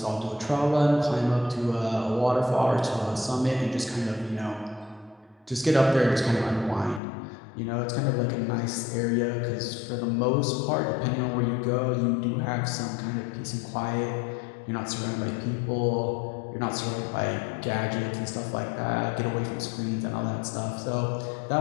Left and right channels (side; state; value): right; drops out; at 7.0 s